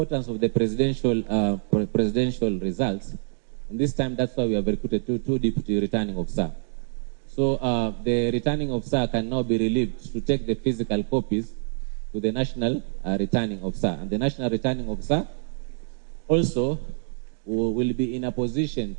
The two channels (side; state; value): left; silent; digital silence